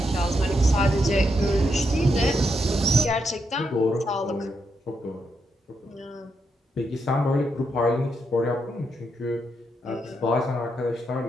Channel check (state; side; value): normal; both; correlation 0.81